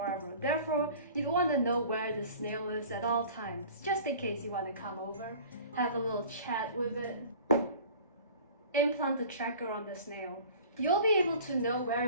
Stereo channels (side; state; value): both; inverted; correlation -0.45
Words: Therefore, you wanna know where the snail is at all times, just in case you wanna come over, have a little chat with it. Implant the tracker on the snail. You'll be able to know where